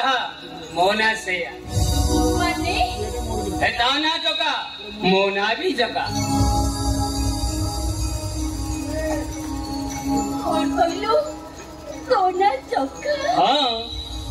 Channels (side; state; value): both; identical; correlation 1.00